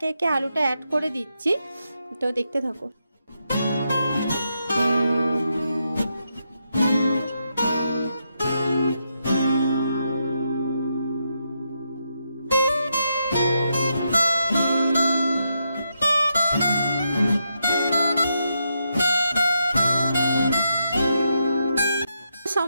একে আলুটা অ্যাড করে দিচ্ছি। তো দেখতে থাকো।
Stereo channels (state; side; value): inverted; both; correlation -0.82